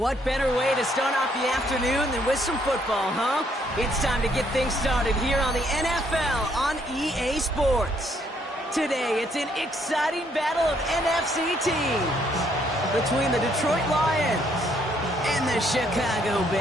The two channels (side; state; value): both; normal; correlation 0.69